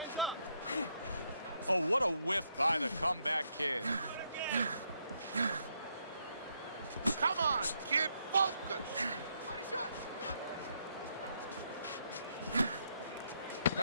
Oh, what a whiff by the Comeback Kid. Come on, kid, focus.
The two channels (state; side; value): inverted; both; correlation -0.76